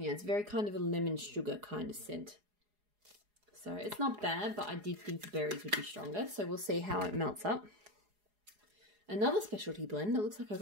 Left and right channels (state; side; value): late; left; 4.8 ms